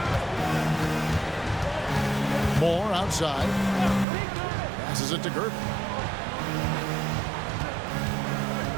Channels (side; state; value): left; drops out; at 4.0 s